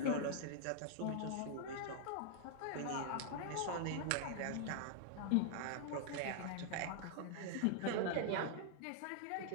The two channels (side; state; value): both; different; correlation -0.01